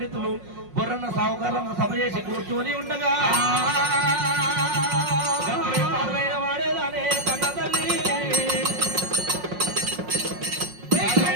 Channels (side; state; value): left; late; 5.5 ms